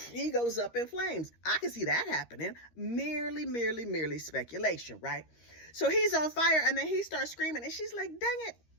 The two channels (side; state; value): right; late; 13 ms